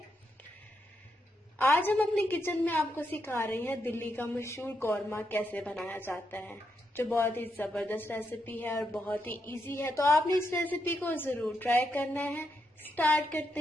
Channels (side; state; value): both; normal; correlation 0.82